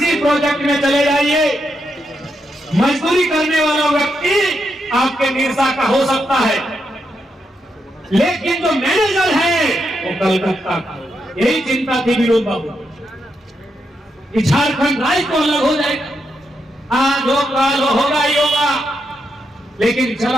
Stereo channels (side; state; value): both; normal; correlation 0.83